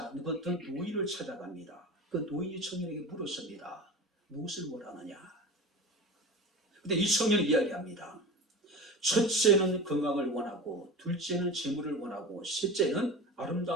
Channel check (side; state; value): both; normal; correlation 0.32